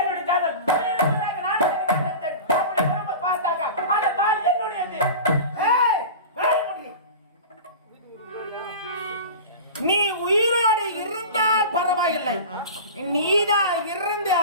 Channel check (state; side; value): inverted; both; correlation -0.32